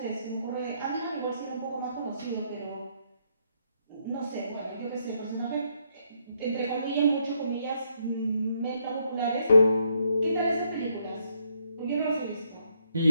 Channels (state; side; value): inverted; both; correlation -0.75